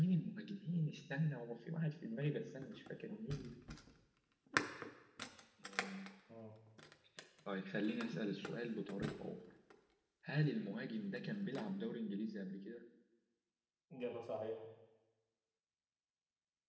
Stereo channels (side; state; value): both; identical; correlation 1.00